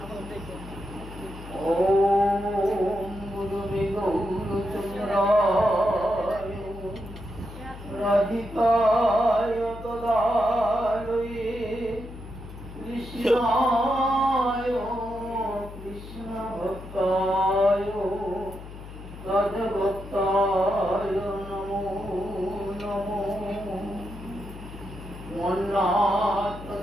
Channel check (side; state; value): left; noise; hum, 13 dB below the sound